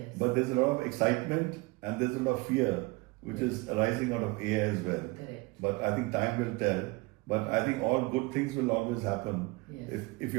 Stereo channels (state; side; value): quieter; left; 24.2 dB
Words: But there's a lot of excitement and there's a lot of fear which is arising out of AI as well. Correct. But I think time will tell. But I think all good things will always happen if